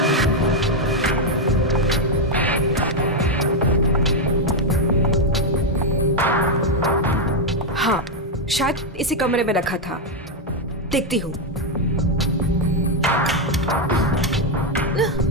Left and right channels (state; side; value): normal; both; correlation 0.02